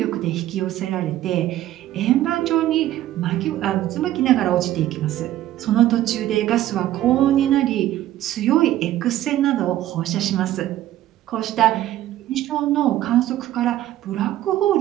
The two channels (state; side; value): quieter; left; 13.6 dB